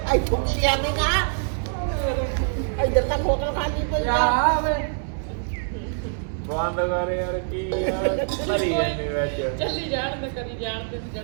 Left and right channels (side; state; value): left; silent; digital silence